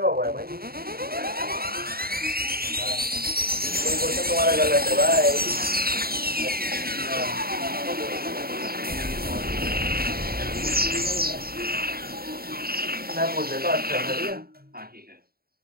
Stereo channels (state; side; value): late; left; 0.44 ms